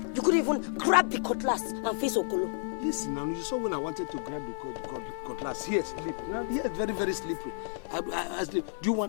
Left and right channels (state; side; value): silent; right; 57 dB below the other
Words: You couldn't even grab the cutlass and face Okolo. Listen, now you saw when I wanted to grab the cutlass. Here, sleep. Now, here, it's very, very slippery. I sleep. Do you